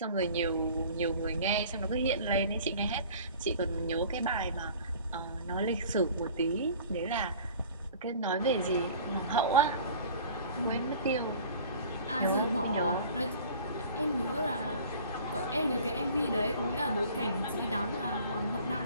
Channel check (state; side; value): inverted; both; correlation -0.46